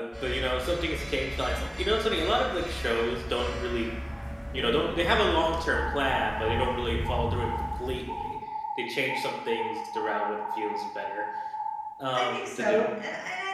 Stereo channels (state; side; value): identical; both; correlation 1.00